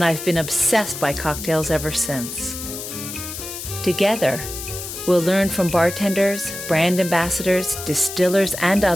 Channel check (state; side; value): noise; left; hiss, 9 dB below the sound